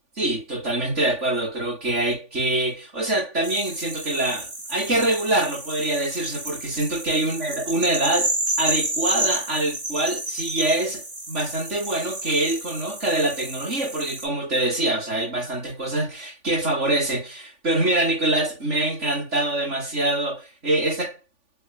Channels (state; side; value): late; left; 3.5 ms